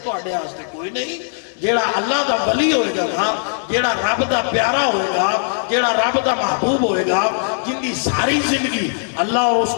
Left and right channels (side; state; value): right; silent; digital silence